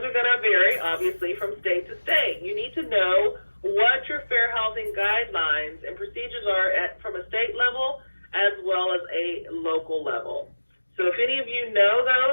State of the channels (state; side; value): inverted; both; correlation -1.00